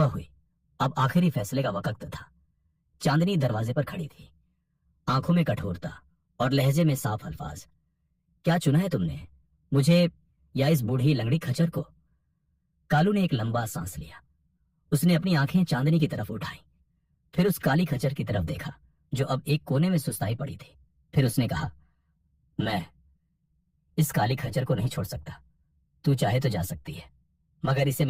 हुई। अब आखिरी फैसले का वक्त था। चांदनी दरवाजे पर खड़ी थी, आंखों में कठोरता और लहजे में साफ अल्फाज। क्या चुना है तुमने, मुझे या इस बूढ़ी लंगड़ी खच्चर को? कालू ने एक लंबा सांस लिया। उसने अपनी आंखें चांदनी की तरफ उठाई, फिर उस काली खच्चर की तरफ देखा जो अब एक कोने में सुस्ताई पड़ी थी। फिर उसने कहा, मैं इस काली खच्चर को नहीं छोड़ सकता। तू चाहे तो जा सकती है, मगर इसे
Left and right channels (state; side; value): identical; both; correlation 1.00